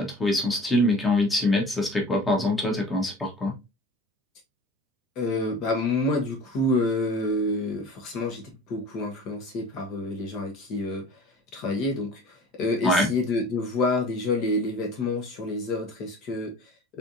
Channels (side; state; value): both; normal; correlation 0.42